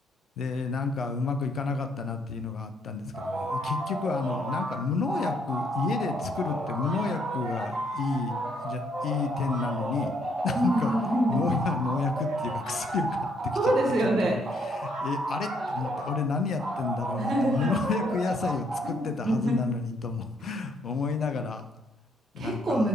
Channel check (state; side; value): normal; both; correlation 0.70